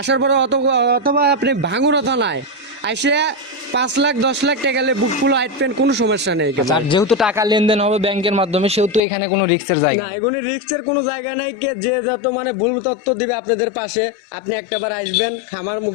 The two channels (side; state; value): right; drops out; at 9.0 s